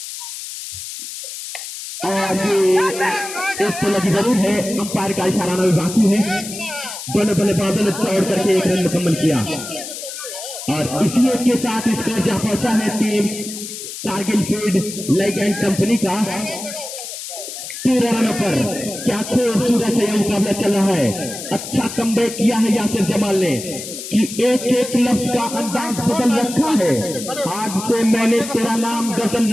और ये एक तो लगी जरूर है। अंपायर का इशारा भी बाकी है। दोनों बल्लेबाजों ने चौड़ करके एक रन मुकम्मल किया और इसी एक के साथ स्कोर जहां पहुंचा है टीम कारगिल फील्ड लाइक एंड कंपनी का 13 रनों पर। क्या खूबसूरत है यह मुकाबला चल रहा है। अच्छा कमबैक किया है यासिर जमाल ने कि एक एक लफ्ज का अंदाज बदल रखा है। आज से मैंने तेरा नाम गजल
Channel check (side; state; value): left; noise; hiss, 9 dB below the sound